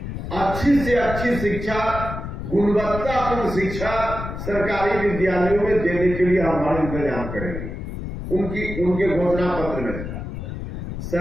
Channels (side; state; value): left; noise; rumble, 7 dB below the sound